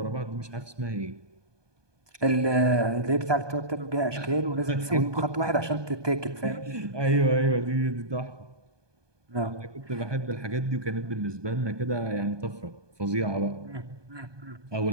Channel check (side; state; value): left; late; 1.2 ms